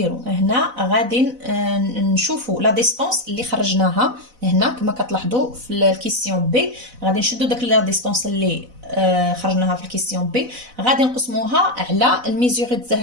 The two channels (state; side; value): late; left; 4.0 ms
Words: هنا غادي نشوفوا لا ديستونس اللي خرجناها هنا كما كتلاحظوا في الكيسيون بي. غادي نشدوا داك لا ديستونس اللي خرجناها في الكيسيون بي غادي نقسموها على الميزوري ديال